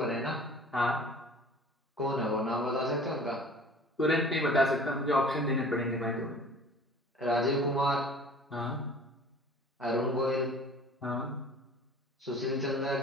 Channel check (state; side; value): normal; both; correlation 0.46